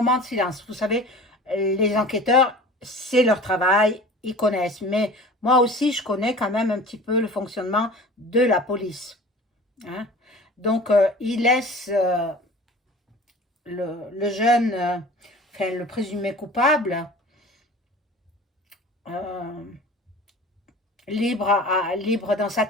de silence. Vous savez, les enquêteurs, c'est leur travail, ils connaissent. Mais moi aussi, je connais quand même un petit peu le fonctionnement de la police. Hein? Donc, il laisse le jeune, enfin le présumé coupable, libre dans sa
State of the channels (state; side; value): normal; both; correlation 0.40